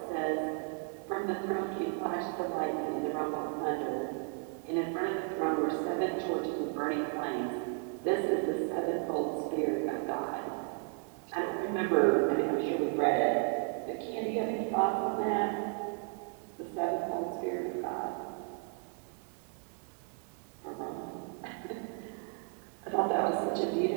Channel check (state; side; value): quieter; left; 39.2 dB